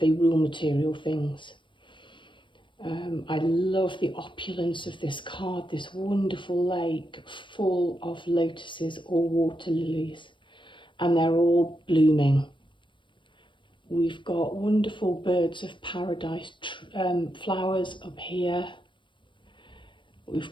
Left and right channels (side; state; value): right; late; 0.24 ms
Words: material things. I love the opulence of this card, this wonderful lake full of lotuses or water lilies, and they're all blooming. We've got wonderful birds of paradise flowers up here.